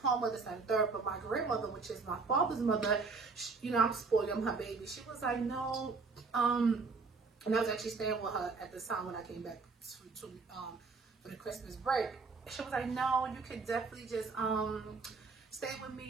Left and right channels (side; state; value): left; quieter; 4.4 dB